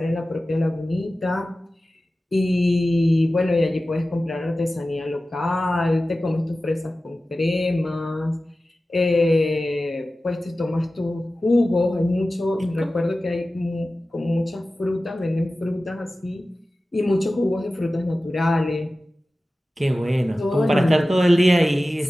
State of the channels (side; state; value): both; normal; correlation 0.95